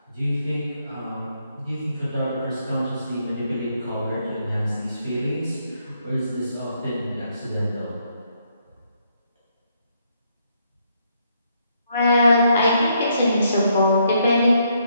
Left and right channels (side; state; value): both; inverted; correlation -0.74